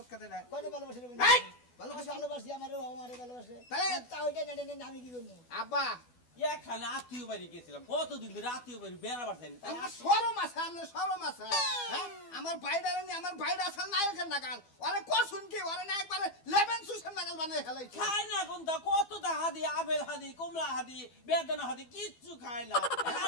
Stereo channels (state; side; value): late; right; 12 ms